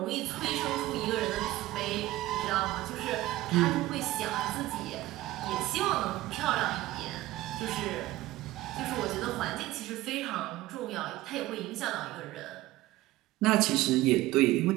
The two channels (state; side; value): quieter; left; 16.9 dB